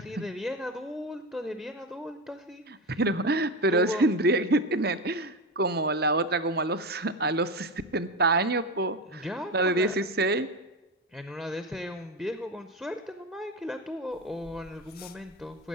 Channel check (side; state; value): both; normal; correlation 0.18